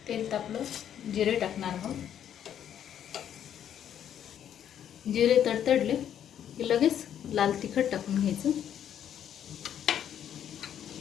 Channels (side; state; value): right; quieter; 9.7 dB